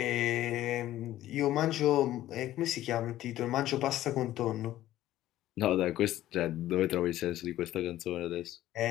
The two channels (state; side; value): quieter; right; 14.1 dB